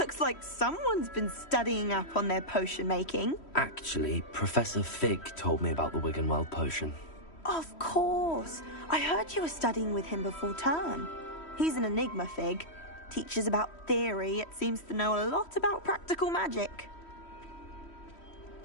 like someone's been studying up on their potion making. Actually, Professor Fig told me about the Wiggenweld potion. Of course. I heard you were studying with him before term. He's an enigma, Fig. Teaches about theory, yet seems to know a lot about practical magic.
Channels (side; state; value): right; late; 3.1 ms